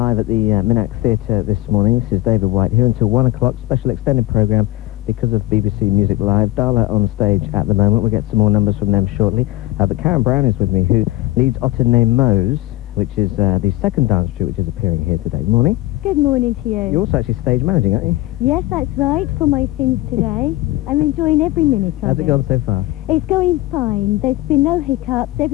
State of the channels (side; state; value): right; quieter; 17.9 dB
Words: at the Minack Theatre this morning. This is David White here until 1 o'clock. Special extended programme because of BBC Music Live. Dala on stage at the moment. We'll get some more numbers from them shortly. But Karen Brown is with me, who leads Otter Ne Moyes, which is the second dance troupe which is appearing here today. Morning. Good morning to you. You're also actually stage managing, aren't you? Yes, that's right, for my sins today. I'm enjoying every minute of it. How's it gone so far? It's going fine. There's been no hiccups.